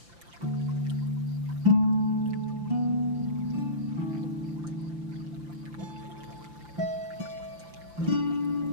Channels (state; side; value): late; left; 5.8 ms